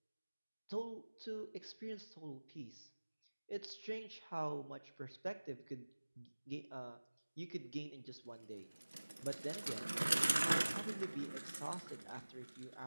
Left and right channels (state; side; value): inverted; both; correlation -1.00